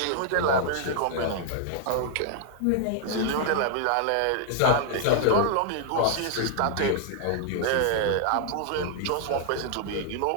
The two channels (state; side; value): different; both; correlation 0.00